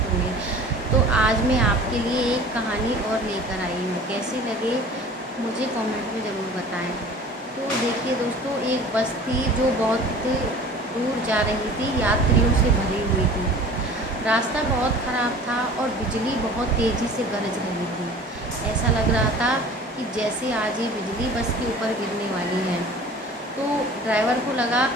होंगे। तो आज मैं आपके लिए एक कहानी और लेकर आई हूँ। कैसी लगे मुझे कमेंट में ज़रूर बताएं। तो देखिए दोस्तों, एक बस थी जो बहुत दूर जा रही थी, यात्रियों से भरी हुई थी। रास्ता बहुत ख़राब था और बिजली बहुत तेज़ी से गरज रही थी। ऐसा लग रहा था कि जैसे आज ये बिजली बस के ऊपर गिरने वाली है। तो ड्राइवर को लगा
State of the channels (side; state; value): both; normal; correlation 0.44